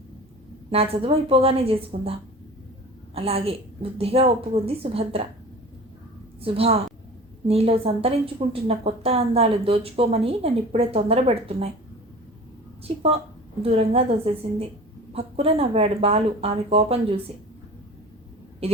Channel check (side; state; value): both; normal; correlation 0.39